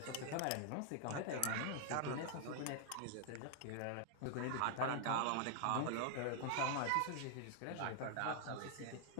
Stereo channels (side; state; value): both; different; correlation 0.00